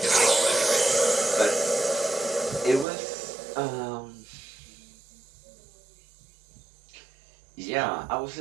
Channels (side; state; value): left; drops out; at 2.9 s